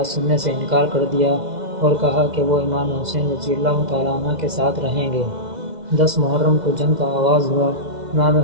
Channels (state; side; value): late; left; 2.0 ms